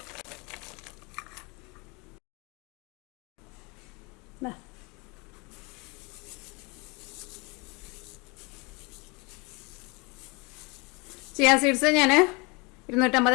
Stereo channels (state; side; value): quieter; right; 28.4 dB